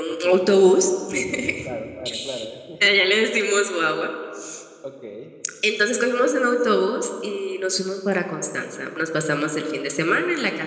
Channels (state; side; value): identical; both; correlation 1.00